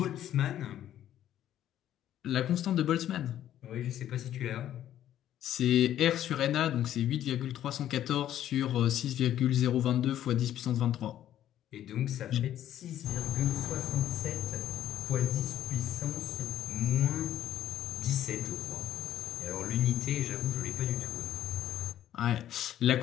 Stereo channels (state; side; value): quieter; right; 11.6 dB